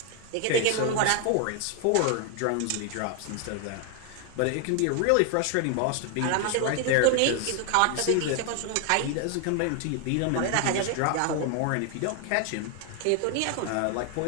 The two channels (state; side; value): different; both; correlation 0.00